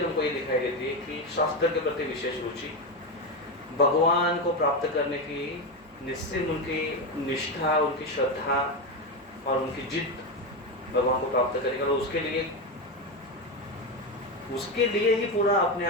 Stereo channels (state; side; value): normal; both; correlation 0.13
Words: हमको ये दिखाई देती है कि शास्त्र के प्रति विशेष रुचि, भगवान को प्राप्त करने की निश्चित उनकी निष्ठा, उनकी श्रद्धा, और उनकी जिद भगवान को प्राप्त करेगा, और उसके लिए ही पूरा अपने